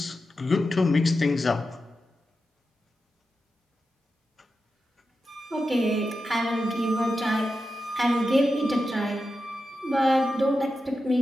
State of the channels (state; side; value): normal; both; correlation 0.90